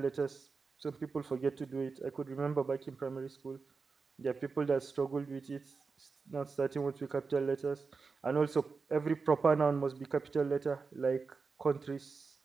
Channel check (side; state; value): left; quieter; 4.7 dB